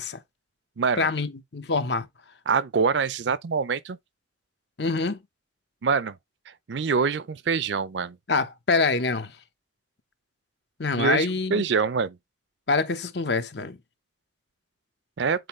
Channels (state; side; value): normal; both; correlation -0.09